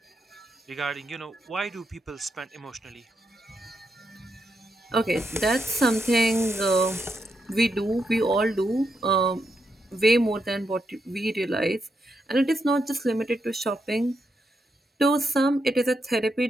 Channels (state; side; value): normal; both; correlation 0.82